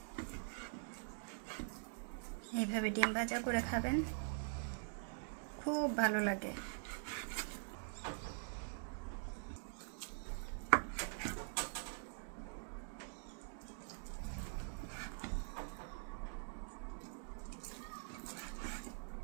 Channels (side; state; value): left; silent; digital silence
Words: এইভাবে ডিম ভাজা করে খাবেন, খুব ভালো লাগে।